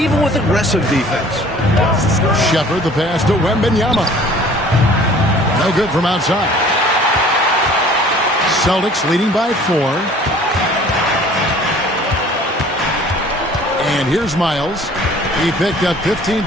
with aggressive defense. Shepard the pass to Wembanyama. No good from outside. Celtics leading by 4. And here's Miles. He picked up 15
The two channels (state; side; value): normal; both; correlation 0.51